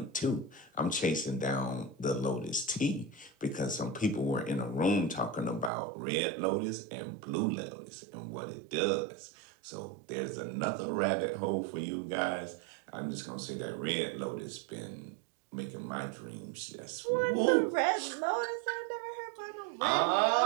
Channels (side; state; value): left; drops out; at 5.7 s